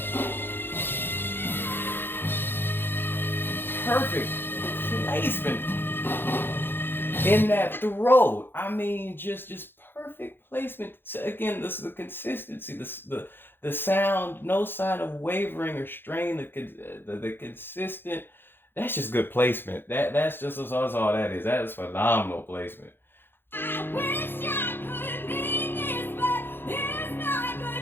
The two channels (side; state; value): right; late; 0.10 ms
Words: perfect placement in that throat. I mean, just perfect placement. So again, this is the consistency, the sound, no sign of wavering or strain. The consistent. That's just good placement. That's just that's all that is. That is phenomenal placement. I wish I could be this, but it's not